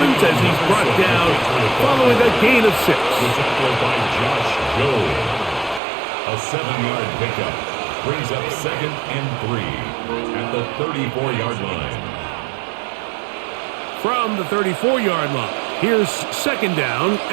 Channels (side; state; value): left; drops out; at 5.8 s